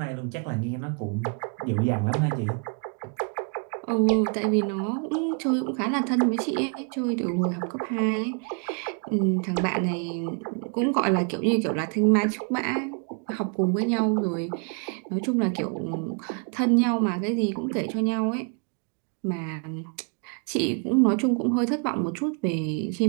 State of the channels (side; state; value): left; quieter; 38.9 dB